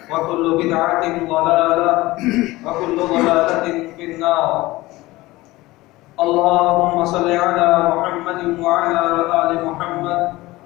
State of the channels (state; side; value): quieter; right; 19.3 dB